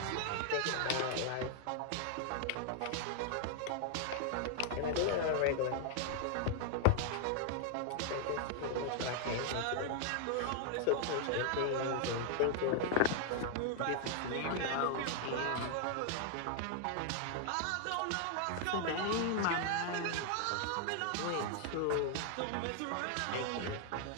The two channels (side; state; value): both; different; correlation 0.00